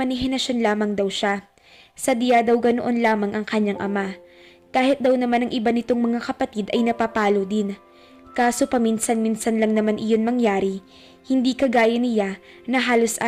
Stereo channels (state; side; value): identical; both; correlation 1.00